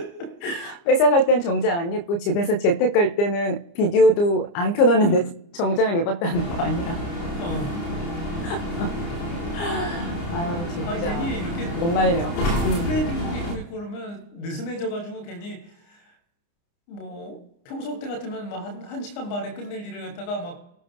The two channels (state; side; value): late; right; 29 ms